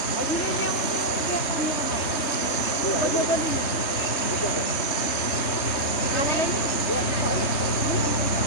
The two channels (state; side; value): late; right; 3.6 ms